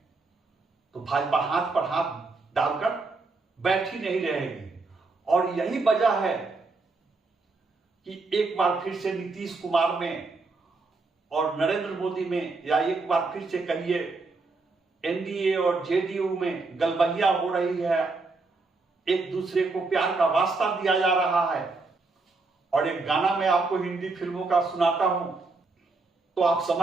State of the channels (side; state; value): left; quieter; 3.8 dB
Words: तो भाजपा हाथ पर हाथ डालकर बैठी नहीं रहेगी। और यही वजह है कि एक बार फिर से नीतीश कुमार में और नरेंद्र मोदी में, या एक बार फिर से कहिए एनडीए और जेडीयू में गलबहिया हो रही है, एक दूसरे को प्यार का वास्ता दिया जा रहा है। और एक गाना मैं आपको हिंदी फिल्मों का सुनाता हूं तो आप